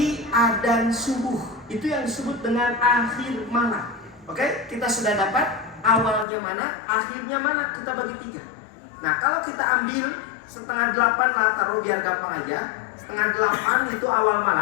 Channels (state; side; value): drops out; right; at 6.2 s